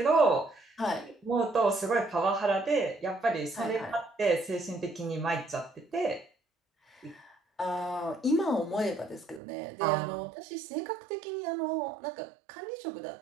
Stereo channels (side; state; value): left; drops out; at 9.4 s